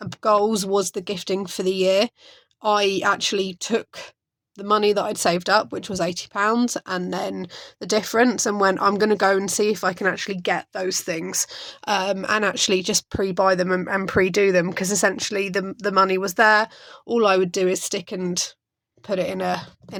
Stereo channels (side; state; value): both; identical; correlation 1.00